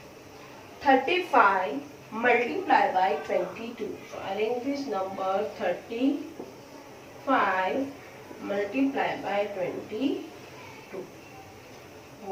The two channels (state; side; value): identical; both; correlation 1.00